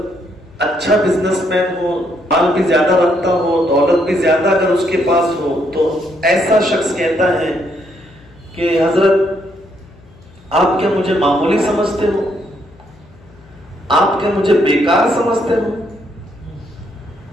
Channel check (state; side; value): noise; left; hum, 26 dB below the sound